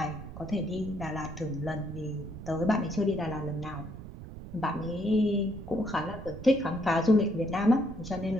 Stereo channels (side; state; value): right; noise; rumble, 12 dB below the sound